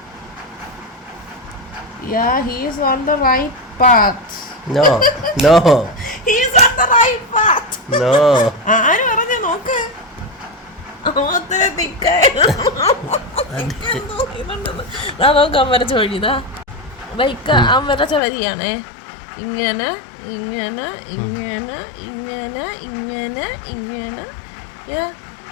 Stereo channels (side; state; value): right; drops out; at 18.2 s